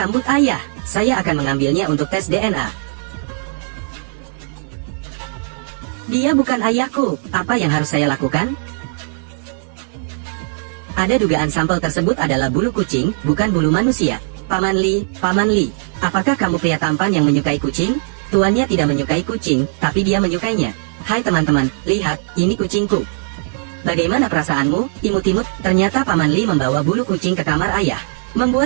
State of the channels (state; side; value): silent; left; digital silence